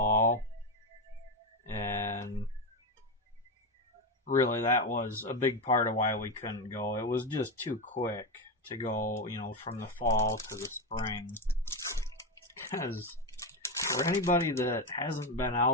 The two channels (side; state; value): both; normal; correlation 0.13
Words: and really that was a big part of why we couldn't go. It was just too quick to go, you know, from the fall to the spring. Because for anybody that hasn't been